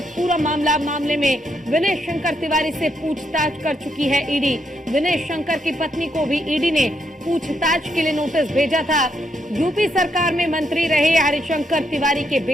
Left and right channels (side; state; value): both; normal; correlation 0.78